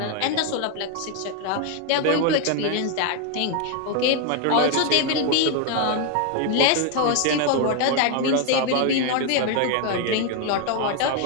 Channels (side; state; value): both; different; correlation 0.01